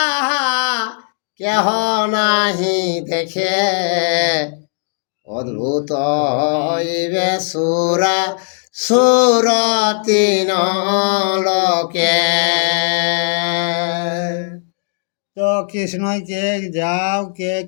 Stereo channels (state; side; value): silent; right; digital silence